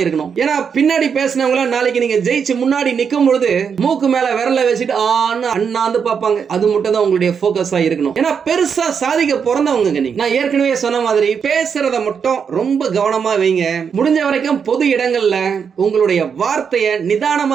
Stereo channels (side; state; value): left; quieter; 6.7 dB